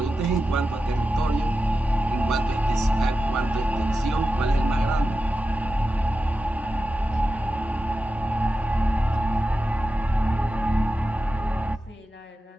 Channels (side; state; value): both; normal; correlation 0.92